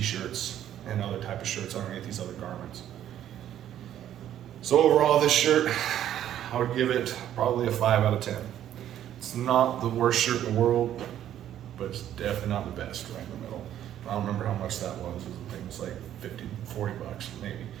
and other type of shirts underneath these other garments. So overall, this shirt, I would give it probably a 5 out of 10. It's not the worst shirt in the world, but it's definitely not the best, right in the middle. I don't remember how much that was. I think it was like 50, 40 bucks,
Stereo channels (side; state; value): left; quieter; 11.2 dB